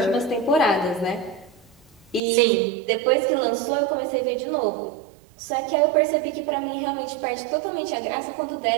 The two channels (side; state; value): left; drops out; at 2.2 s